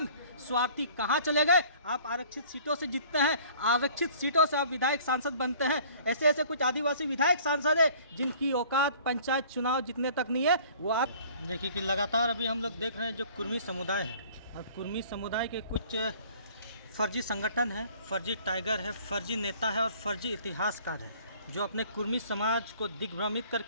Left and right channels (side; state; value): both; inverted; correlation -0.51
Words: स्वार्थी कहाँ चले गए? आप आरक्षित सीटों से जीतते हैं, आरक्षित सीटों से आप विधायक सांसद बनते हैं। ऐसे ऐसे कुछ आदिवासी विधायक सांसद है जिनकी औकात पंचायत चुनाव जीतने तक नहीं है। वो आप देखिए कि लगातार अभी हम लोग देख रहे हैं जो कुर्मी समुदाय है, और कुर्मी समुदाय के कुछ फर्जी संगठन है, फर्जी टाइगर है, फर्जी नेता है और फर्जी इतिहासकार है, जो अपने कुर्मी समाज को दिग्भ्रमित